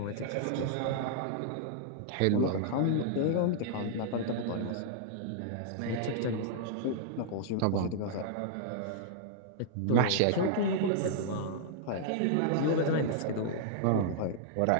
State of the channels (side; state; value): both; different; correlation -0.01